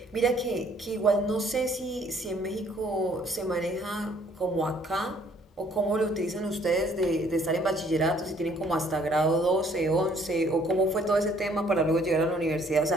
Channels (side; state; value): both; normal; correlation 0.62